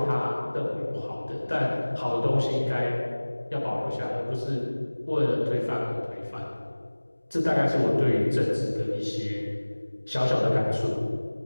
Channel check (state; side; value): inverted; both; correlation -1.00